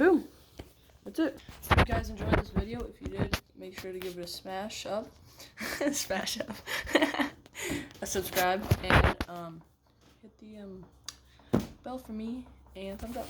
That's it. If you guys enjoyed this video, if you did, make sure to give it a smash up. Smash up. A subscribe, and hit the bell for me, and thumbs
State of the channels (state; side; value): identical; both; correlation 1.00